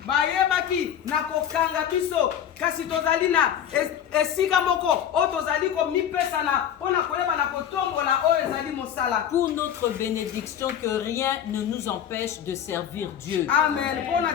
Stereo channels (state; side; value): quieter; right; 9.5 dB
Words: Bayebaki na kokanga biso kasi tozali na esika moko o tozali komipesa na mpona koyeba na kotombola oyo ezali mosala. Pour notre bénédiction, que rien ne nous empêche de servir Dieu. Amen. Mpona